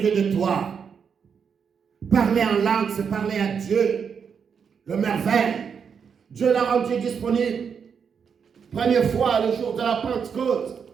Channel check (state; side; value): quieter; left; 6.7 dB